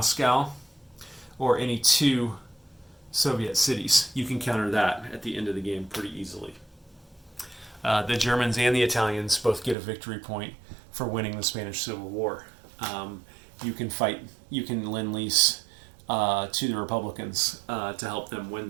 or any 2 Soviet cities. You can counter that at the end of the game pretty easily. The Germans and the Italians both get a victory point for winning the Spanish Civil War. You can lend-lease to the Republicans to help them win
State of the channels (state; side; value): drops out; left; at 9.8 s